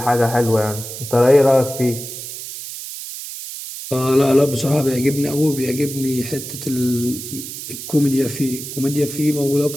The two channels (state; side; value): noise; right; hiss, 9 dB below the sound